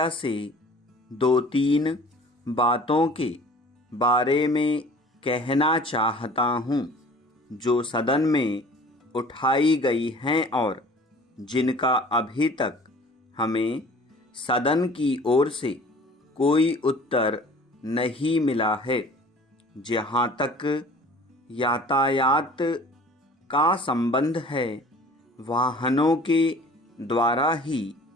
से 2-3 बातों के बारे में कहना चाहता हूँ जो सदन में उठाई गई हैं और जिनका अभी तक हमें सदन की ओर से कोई उत्तर नहीं मिला है। जहाँ तक यातायात का संबंध है, वाहनों के द्वारा ही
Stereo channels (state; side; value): normal; both; correlation 0.47